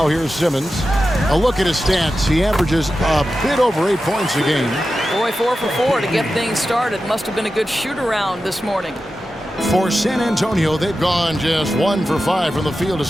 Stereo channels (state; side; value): normal; both; correlation 0.92